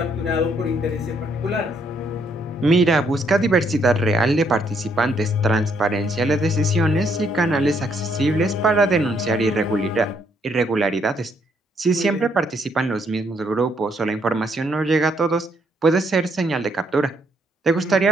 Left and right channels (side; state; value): both; normal; correlation 0.71